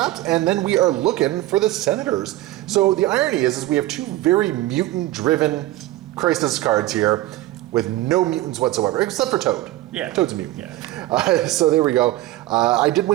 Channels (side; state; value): left; quieter; 16.3 dB